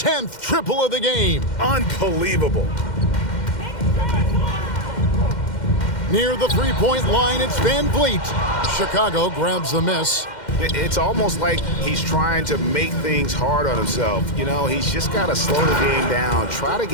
triple of the game. Unbelievable. Near the three-point line, it's Van Vliet. Chicago grabs the miss. It's almost like he's trying to make things hard on himself. You know, he's just got to slow the game down, try to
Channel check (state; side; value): late; right; 2.1 ms